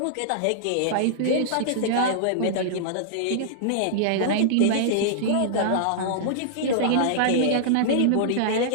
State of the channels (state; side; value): different; both; correlation -0.02